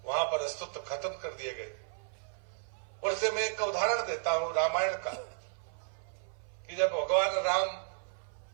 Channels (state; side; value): silent; left; 55 dB below the other